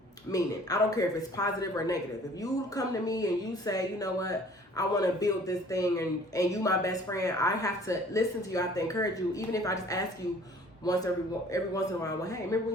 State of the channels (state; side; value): normal; both; correlation 0.52